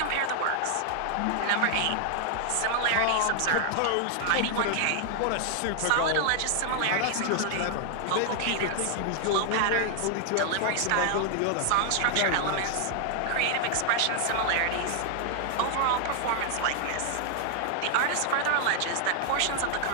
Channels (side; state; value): both; different; correlation 0.00